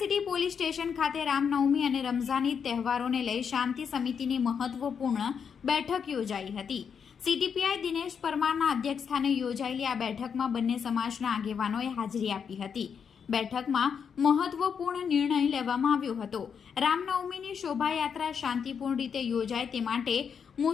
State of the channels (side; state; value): right; quieter; 6.9 dB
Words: સિટી પોલીસ સ્ટેશન ખાતે રામનવમી અને રમઝાન ઈદ તહેવારોને લઈ શાંતિ સમિતિની મહત્વપૂર્ણ બેઠક યોજાઈ હતી। સિટી પીઆઈ દિનેશ પરમારના અધ્યક્ષસ્થાને યોજાયેલી આ બેઠકમાં બંને સમાજના આગેવાનોએ હાજરી આપી હતી। બેઠકમાં મહત્વપૂર્ણ નિર્ણય લેવામાં આવ્યો હતો। રામનવમીની શોભાયાત્રા શાંતિપૂર્ણ રીતે યોજાય તે માટે